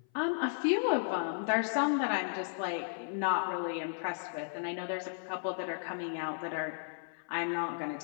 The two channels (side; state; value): right; silent; 55 dB below the other